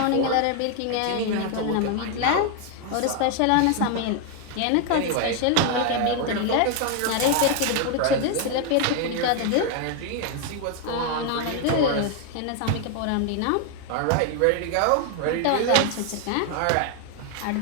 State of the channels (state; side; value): different; both; correlation 0.01